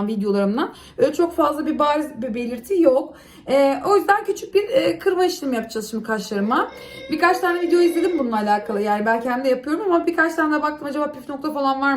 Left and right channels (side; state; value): both; identical; correlation 1.00